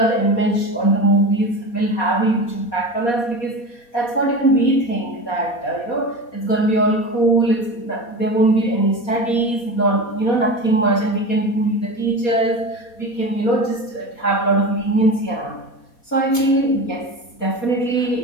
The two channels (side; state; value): right; late; 4.2 ms